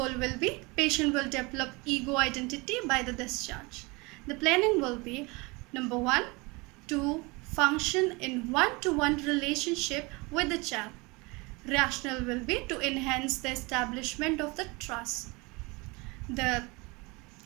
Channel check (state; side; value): quieter; left; 26.2 dB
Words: will be patient will develop ego identity by the discharge. The planning will be number 1, to function in one-to-one relationship with the child. Rationale will be to enhance the establishment of the trust. The